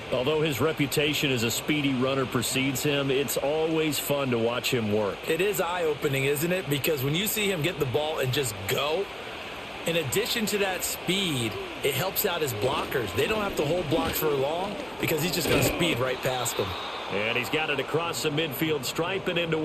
Although his reputation as a speedy runner precedes him, it's always fun to watch him work. It is eye-opening, isn't it? Because when you see him get the ball and just go, in addition to that speed, it helps out his blockers. They don't have to hold blocks for long because he's just going to speed right past them. And he's got it across the midfield stripe and into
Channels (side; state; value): left; noise; hum, 28 dB below the sound